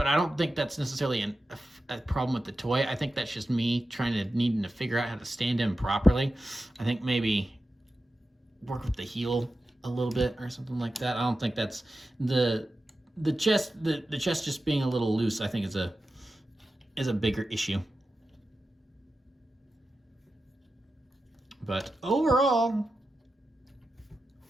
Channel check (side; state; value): both; normal; correlation 0.92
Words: I don't think that's necessarily a problem with the toy. I think that's just me needing to figure out how to stand him properly. I think maybe work with the heel a little bit or something like that. I don't think that's the chest just being a little loose, I think is a bigger issue. But overall,